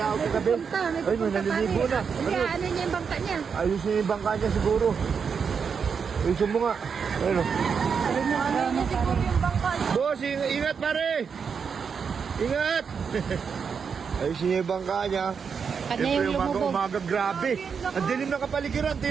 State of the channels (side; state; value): left; quieter; 6.2 dB